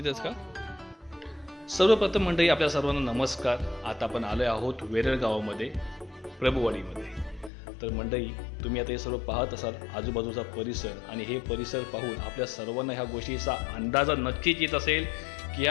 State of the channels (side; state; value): right; drops out; at 7.5 s